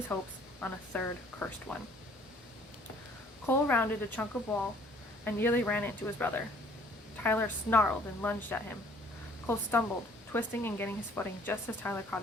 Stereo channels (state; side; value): normal; both; correlation 0.57